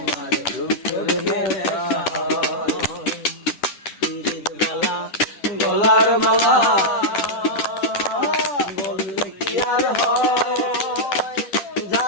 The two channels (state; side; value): late; right; 10 ms